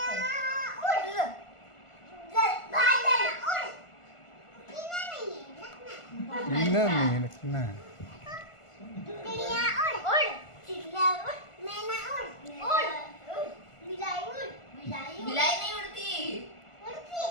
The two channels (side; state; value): right; late; 1.5 ms